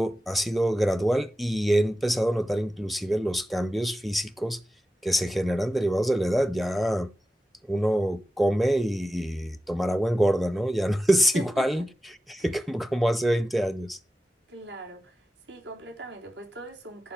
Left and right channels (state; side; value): normal; both; correlation 0.93